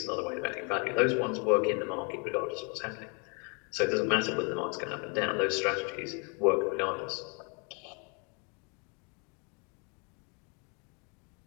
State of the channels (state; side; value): quieter; right; 34.8 dB